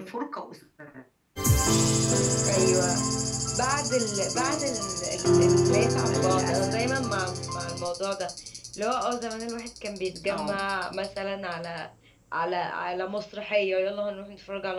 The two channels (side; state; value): both; identical; correlation 1.00